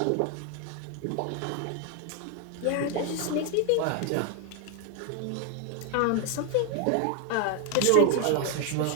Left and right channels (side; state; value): both; different; correlation 0.01